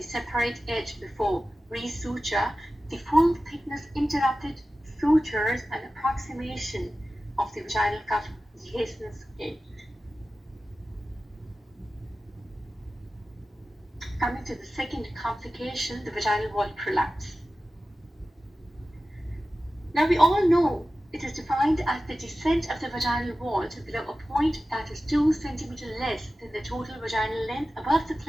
separate edge before resuture, the full thickness interrupted sutures, and approximation of the vaginal cup dehiscence edge. Coming to the second complication, the vaginal wall prolapse. Now we all know it is defined as the descent of the vaginal wall to below a point that is 2 cm less than the total vaginal length above the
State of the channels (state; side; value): normal; both; correlation 0.95